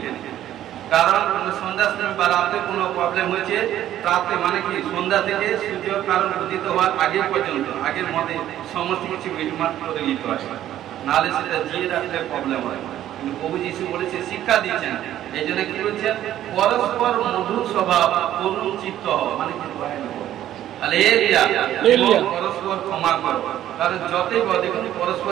কারণ সন্ধ্যা সময় বা রাতে কোনো প্রবলেম হয়েছে, রাতে মানে কি সন্ধ্যা থেকে সূর্য কারণ উদিত হওয়ার আগে পর্যন্ত, আগের মধ্যে সমস্ত কিছু মিটমাট করে নিতে হয়, নাহলে সেটা জিয়ে রাখলে প্রবলেম হয়। কিন্তু প্রভু যিশু বলেছে, শিক্ষা দিচ্ছেন, এই জন্য কি বলছেন, পরস্পর মধুর স্বভাব, করুণ চিত্ত হও, মানে কি পরস্পর ক্ষমা করো। কারণ যতই দেখুন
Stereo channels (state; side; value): quieter; left; 12.2 dB